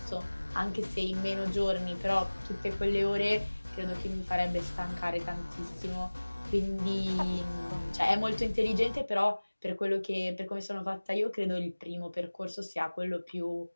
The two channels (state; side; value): inverted; both; correlation -1.00